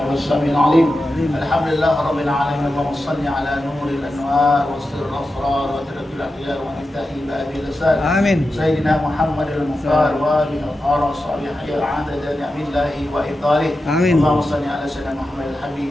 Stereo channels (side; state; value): both; normal; correlation 0.91